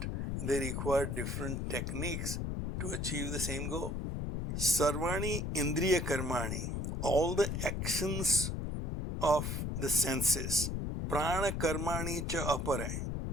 They require different techniques to achieve the same goal. Sarvani indriya karmani. All the actions of the senses. Prana karmani cha apare.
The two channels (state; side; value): noise; left; rumble, 2 dB below the sound